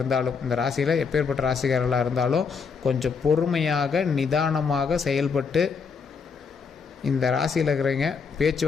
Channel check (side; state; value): right; quieter; 5.6 dB